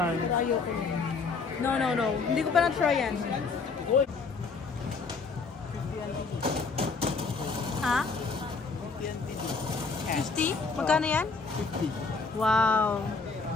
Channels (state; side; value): quieter; right; 4.6 dB